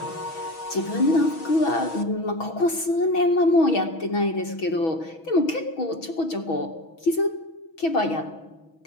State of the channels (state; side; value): late; right; 6.2 ms